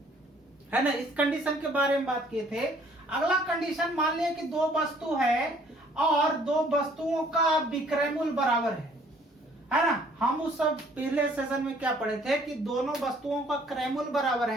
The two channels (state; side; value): normal; both; correlation 0.59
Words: है ना। इस कंडीशन के बारे में बात किए थे। अगला कंडीशन मान लिया कि दो वस्तु है और दो वस्तुओं का विक्रय मूल्य बराबर है ना। हम उस सब पहले सेशन में क्या पढ़े थे कि दोनों वस्तुओं का क्रय मूल्य बराबर